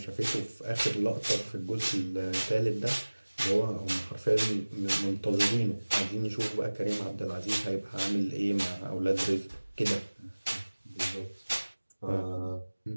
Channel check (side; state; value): both; inverted; correlation -1.00